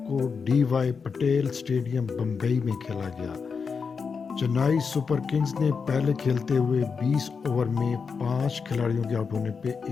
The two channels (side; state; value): right; quieter; 5.5 dB